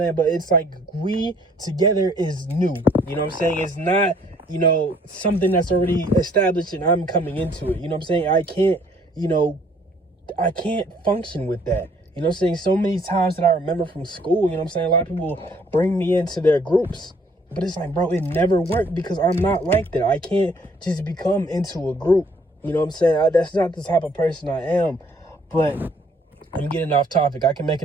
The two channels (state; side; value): normal; both; correlation 0.62